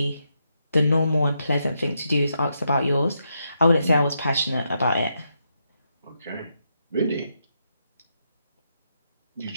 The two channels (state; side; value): inverted; both; correlation -0.82